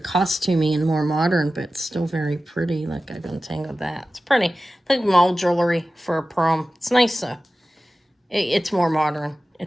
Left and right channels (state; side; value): normal; both; correlation 0.95